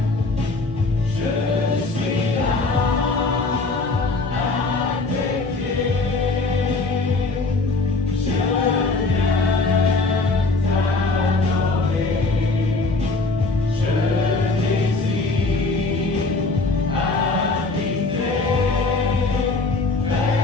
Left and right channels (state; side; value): quieter; right; 3.5 dB